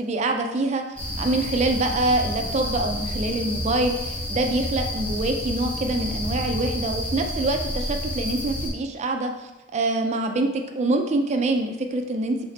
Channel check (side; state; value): both; normal; correlation 0.36